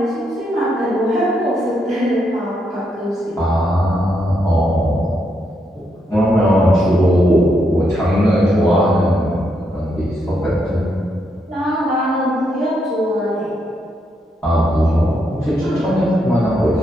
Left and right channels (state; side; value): normal; both; correlation 0.79